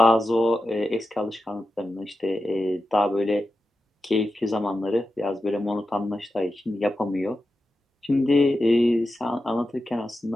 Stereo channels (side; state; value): both; normal; correlation 0.91